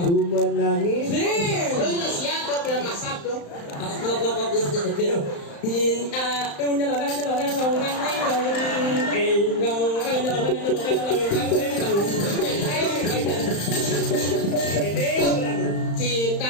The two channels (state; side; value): late; right; 35 ms